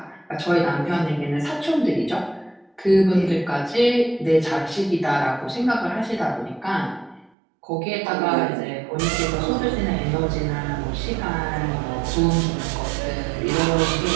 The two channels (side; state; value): left; drops out; at 7.3 s